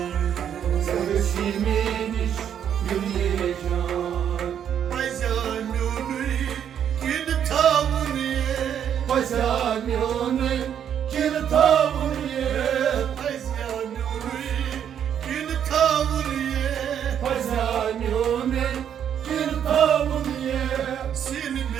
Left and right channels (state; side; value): quieter; left; 9.1 dB